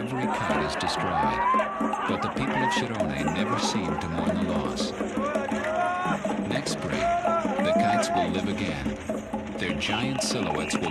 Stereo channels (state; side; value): identical; both; correlation 1.00